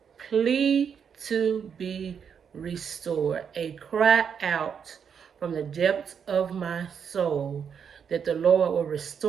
plea to be restored. A cry out from the depths of my soul that the Lord will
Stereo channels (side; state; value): left; quieter; 7.2 dB